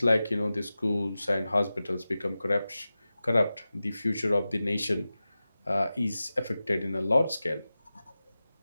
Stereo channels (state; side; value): inverted; both; correlation -0.95